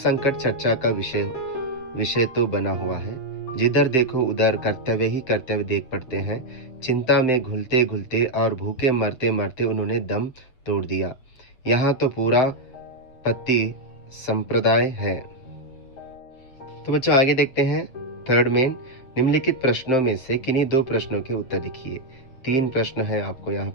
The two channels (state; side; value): late; right; 7.5 ms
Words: चर्चा का विषय तो बना हुआ है। जिधर देखो उधर कर्तव्य ही कर्तव्य देख पड़ते हैं। चिंता में घुलते और भूखे मरते मरते उन्होंने दम तोड़ दिया। यहाँ तो पूरा पति संप्रदाय है। तो बच्चों, आगे देखते हैं। थर्ड मेन, निम्नलिखित प्रश्नों में से किन्हीं 2 प्रश्नों के उत्तर लिखिए। 3 प्रश्न है, आपको यहाँ